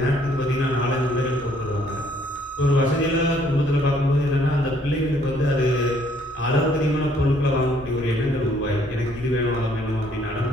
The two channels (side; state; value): both; normal; correlation 0.64